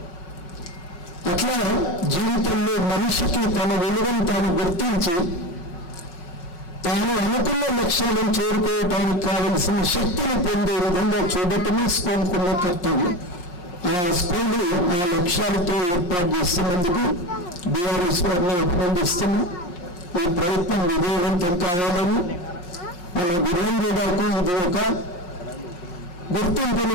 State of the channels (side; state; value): right; late; 5.6 ms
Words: అట్లా జీవితంలో మనిషికి తన విలువను తాను గుర్తించి తాను అనుకున్న లక్ష్యాలను చేరుకోవటానికి కావలసిన శక్తిని పొందే విధంగా చూడటమే స్కూల్కున్న కర్తవ్యం. ఆ స్కూల్ ఆ లక్ష్యాలతో ఏర్పాటు చేస్తున్నందుకు బీఆర్ఎస్ వారిని అభినందిస్తున్నాం. ఈ ప్రయత్నం విజయవంతం కావాలని మన వీరంజీవాకు ఇది ఒక గుర్తింపుని